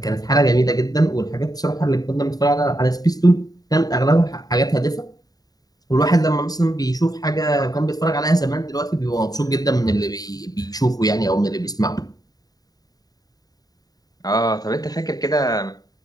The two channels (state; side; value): late; right; 0.18 ms